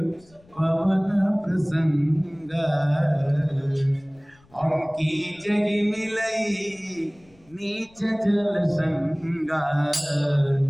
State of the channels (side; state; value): left; noise; rumble, 30 dB below the sound